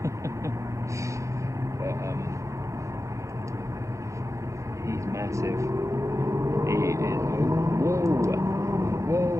But he's massive. He is. Whoa!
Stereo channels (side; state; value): left; late; 0.15 ms